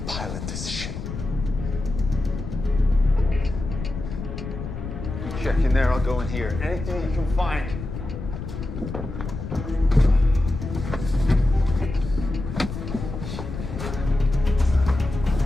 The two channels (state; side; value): noise; left; rumble, 7 dB below the sound